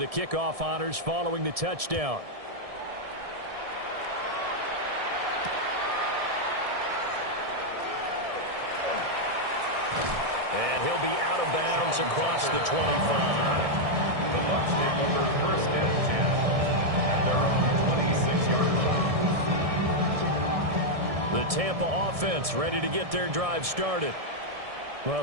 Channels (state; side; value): late; left; 1.7 ms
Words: the kickoff honors following the touchdown. And he'll be out of bounds across the 25. The Bucs take over 1st and 10 at their own 26-yard line. The Tampa offense ready to get their drive started.